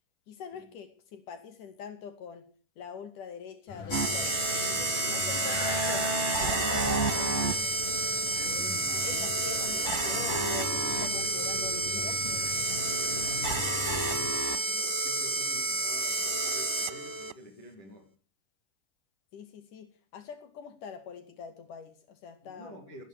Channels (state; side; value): late; right; 10 ms